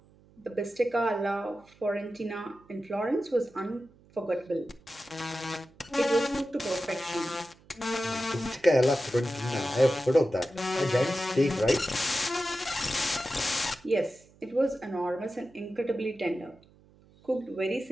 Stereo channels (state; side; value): noise; right; hum, 28 dB below the sound